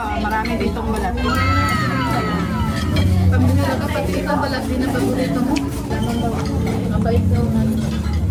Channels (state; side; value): identical; both; correlation 1.00